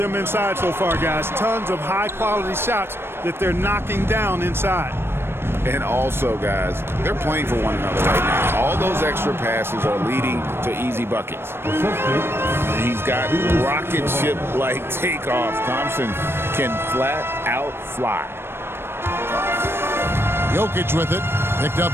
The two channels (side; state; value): left; late; 0.12 ms